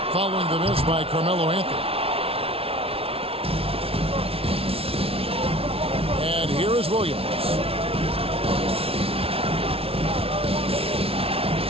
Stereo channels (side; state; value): left; late; 0.27 ms